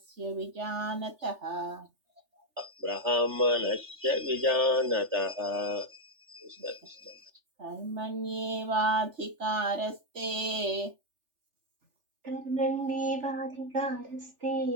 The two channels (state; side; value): late; left; 3.4 ms